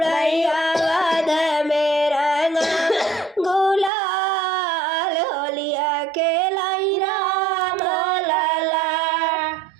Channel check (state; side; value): drops out; left; at 3.9 s